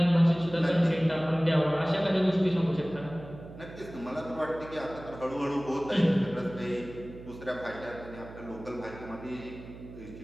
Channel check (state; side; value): noise; right; hum, 15 dB below the sound